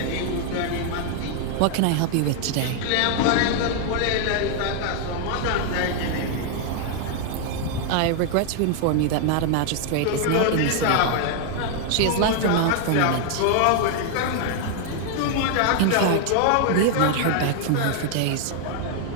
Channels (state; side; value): different; both; correlation 0.00